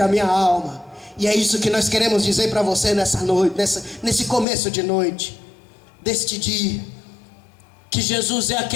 minha alma. E é isso que nós queremos dizer para você nessa noite, nesse começo de noite, deste dia, que Jesus é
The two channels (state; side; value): drops out; right; at 4.5 s